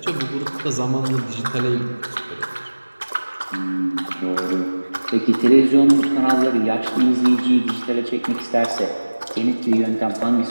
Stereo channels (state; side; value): inverted; both; correlation -1.00